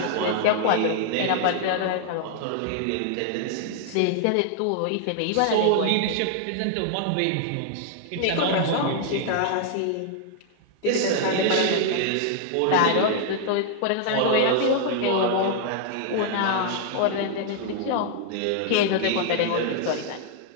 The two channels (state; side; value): different; both; correlation 0.00